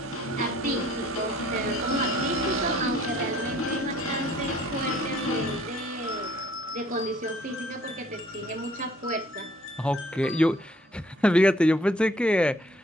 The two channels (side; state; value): both; normal; correlation 0.59